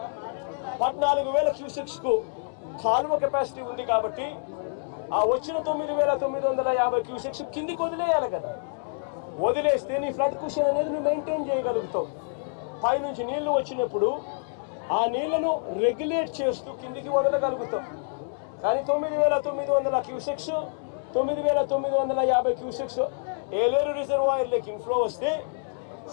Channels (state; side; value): silent; right; digital silence